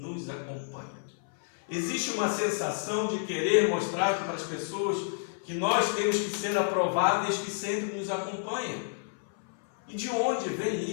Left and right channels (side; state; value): right; silent; 58 dB below the other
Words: acompanha. Existe uma sensação de querer mostrar para as pessoas que nós temos que ser aprováveis que sempre nos acompanha. E de onde vem